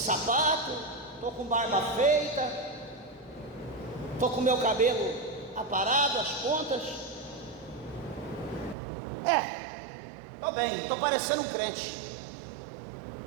estou com barba feita, estou com meu cabelo aparado, as pontas, estou bem, estou parecendo um crente.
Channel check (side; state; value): left; drops out; at 8.8 s